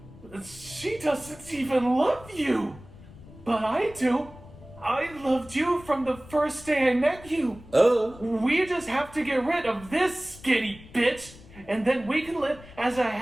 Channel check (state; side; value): noise; left; rumble, 19 dB below the sound